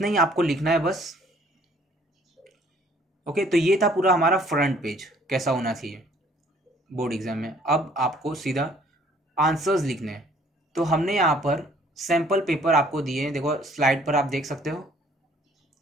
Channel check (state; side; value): normal; both; correlation 0.59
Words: ही आपको लिखना है बस। ओके, तो ये था पूरा हमारा फ्रंट पेज कैसा होना चाहिए बोर्ड एग्जाम में। अब आपको सीधा आंसर्स लिखने हैं। तो हमने यहाँ पर सैम्पल पेपर आपको दिए हैं, देखो स्लाइड पर आप देख सकते हो।